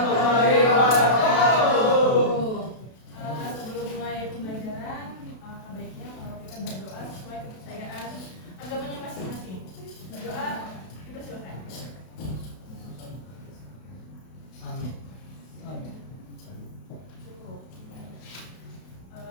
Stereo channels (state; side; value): late; right; 32 ms